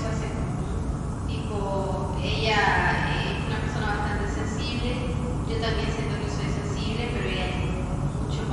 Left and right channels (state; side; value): identical; both; correlation 1.00